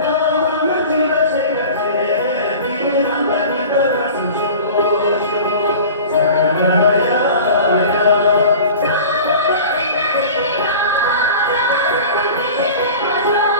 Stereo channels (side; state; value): both; inverted; correlation -0.39